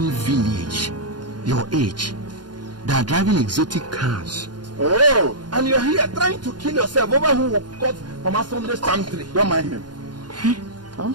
village, your age, they are driving exotic cars. Oh, and you're here trying to kill yourself over who caught Mama Sunday's palm tree. Don't mind him.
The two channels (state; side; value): late; left; 0.70 ms